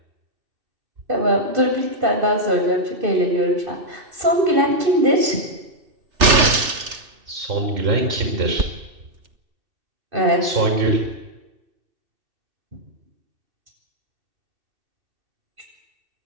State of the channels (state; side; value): late; left; 3.3 ms